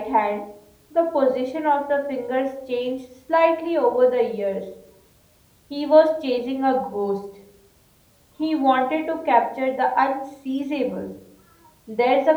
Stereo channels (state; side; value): identical; both; correlation 1.00